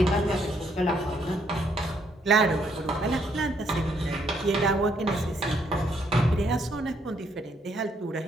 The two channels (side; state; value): both; normal; correlation 0.71